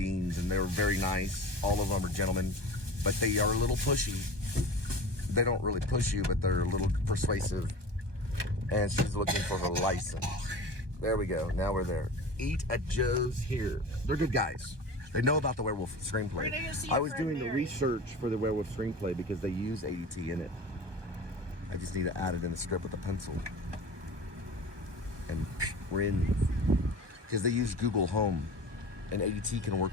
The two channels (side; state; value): left; late; 1.2 ms